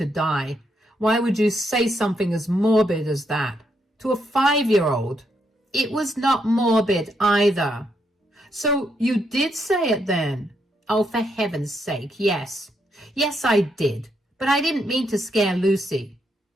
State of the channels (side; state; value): both; normal; correlation 0.78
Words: die. Why would you say something as morbid as that to a 5-year-old? It was not morbid either. So you did say it then? Oh, for heaven's sake, yes. Yes, I did. But I didn't mean to scare Lucy.